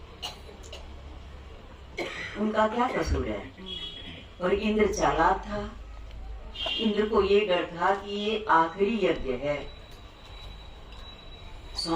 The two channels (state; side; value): identical; both; correlation 1.00